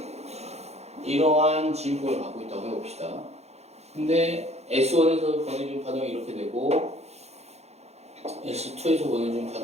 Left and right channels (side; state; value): left; late; 0.31 ms